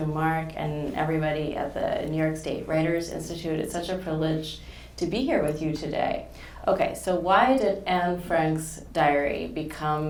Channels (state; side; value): identical; both; correlation 1.00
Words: Mark and everybody at the New York State Writers Institute. It's such a privilege to be here with you today. Okay, so why did Anne Frank's diary